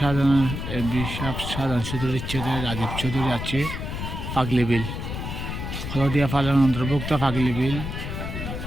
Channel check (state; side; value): noise; left; rumble, 5 dB below the sound